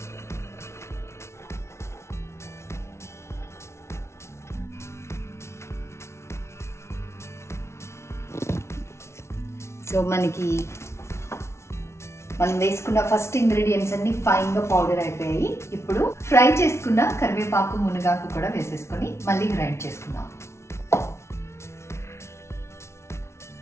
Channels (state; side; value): late; right; 0.13 ms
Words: సో మనకి మనం వేసుకున్న ఫస్ట్ ఇంగ్రీడియంట్స్ అన్ని ఫైన్ గా పౌడర్ అయిపోయాయి. ఇప్పుడు ఫ్రై చేసుకున్న కరివేపాకు, మునగాకు కూడా వేసేసుకొని మళ్ళీ గ్రైండ్ చేసుకుందాం.